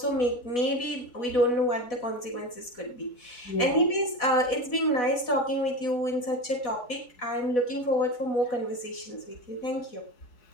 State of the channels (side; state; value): right; late; 4.1 ms